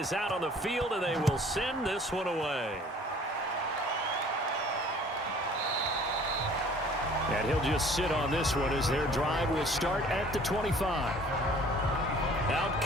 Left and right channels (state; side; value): normal; both; correlation 0.52